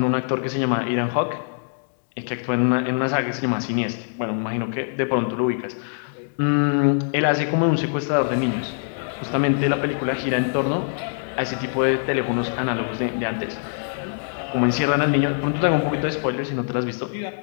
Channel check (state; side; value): silent; right; digital silence